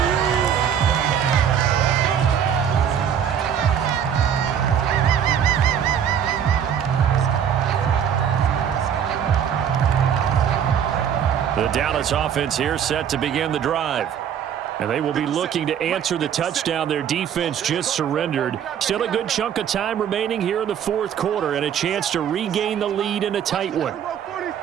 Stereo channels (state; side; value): quieter; left; 8.6 dB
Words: The Dallas offense here set to begin the drive. And they will be looking to answer the touchdown their defense just surrendered. Still a good chunk of time remaining here in the 4th quarter and a chance to regain the lead in a tight one.